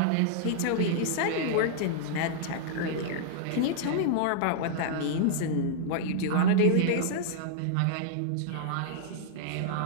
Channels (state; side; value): different; both; correlation -0.01